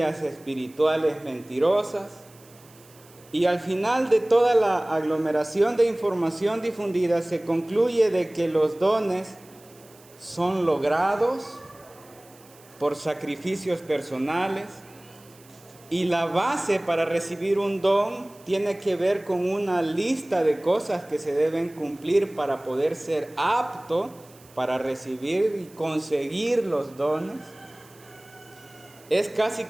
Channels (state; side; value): noise; right; hiss, 26 dB below the sound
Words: espirituales mentirosas, y al final de toda la aglomeración de información difundida se concluye de que los dones son logrados por sacrificios personales, y la base para recibir un don tiene que ver con una lista de cosas que se deben cumplir para poder ser apto para recibir y conseguir los dones. Es casi